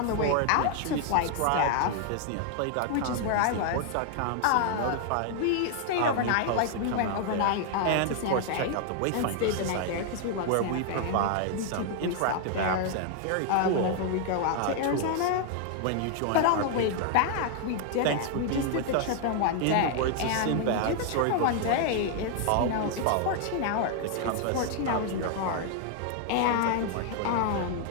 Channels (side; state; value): both; different; correlation 0.00